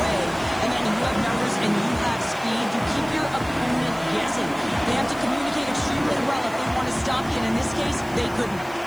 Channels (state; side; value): noise; left; hiss, 21 dB below the sound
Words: And then you have numbers and you have speed. You keep your opponent guessing. They have to communicate extremely well if they want to stop you. And in this case, they couldn't.